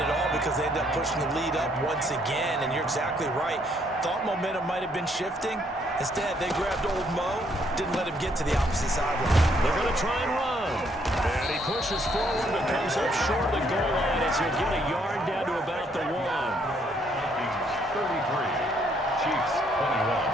at all, because they ended up pushing the lead up once again. And you're exactly right. Thought momentum might have been shifting. Instead, they grabbed old Mo, didn't let him get to the opposite sideline. They're going to try and run. And he pushes forward but comes up short of the goal line as he'll get a yard down to about the 1. Vikings 33, Chiefs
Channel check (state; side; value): normal; both; correlation 0.69